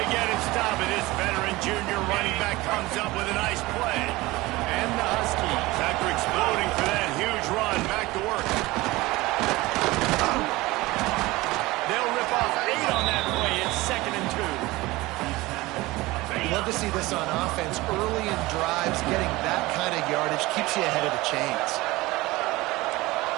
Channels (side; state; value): left; quieter; 20.3 dB